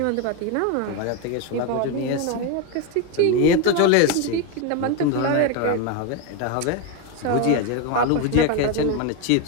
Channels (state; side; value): different; both; correlation 0.02